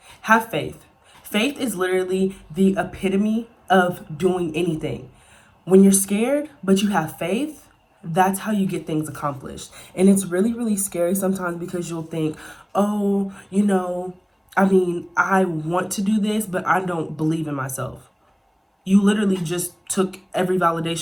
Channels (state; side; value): identical; both; correlation 1.00